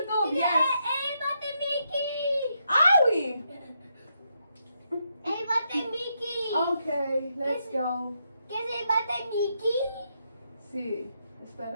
Yes. Bate Mickey! Awi! Bate Mickey! Okay, let's go. Kasi bate Mickey? Sí,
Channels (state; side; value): inverted; both; correlation -0.80